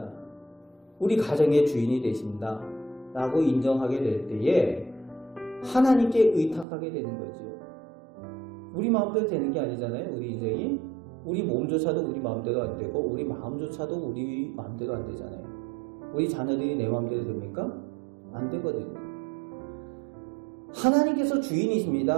우리 가정의 주인이 되신다. 라고 인정하게 될 때에 하나님께 의탁하게 되는 거죠. 우리 마음대로 되는 게 아니잖아요. 우리 인생이. 우리 몸조차도 우리 마음대로 안 되고 우리 마음조차도 우리 마음대로 안 되잖아요. 우리 자녀들이 내 마음대로 됩니까? 안 되거든요. 하나님께서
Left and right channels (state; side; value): drops out; left; at 6.7 s